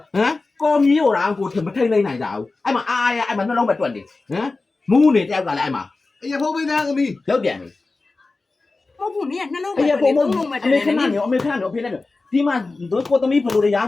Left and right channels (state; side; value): quieter; right; 3.6 dB